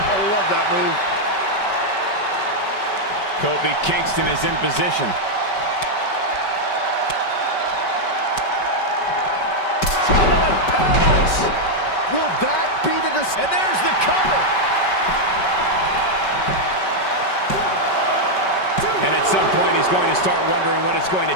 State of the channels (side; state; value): right; late; 5.2 ms